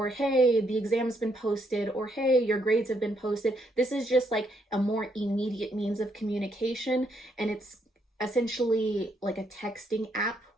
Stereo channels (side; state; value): both; normal; correlation 0.74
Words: hey, the exam's been posted, or hey, your grades have been posted. This is just like a more immediate means of communication, and it's essentially like a texting app